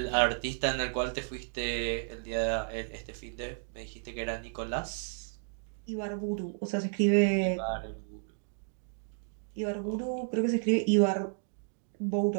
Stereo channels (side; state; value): left; silent; digital silence